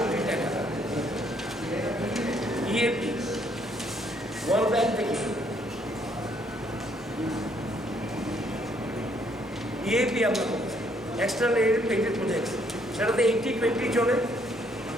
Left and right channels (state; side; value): normal; both; correlation 0.68